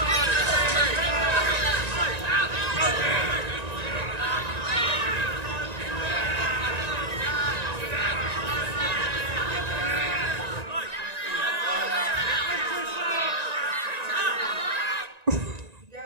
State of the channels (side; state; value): left; late; 1.9 ms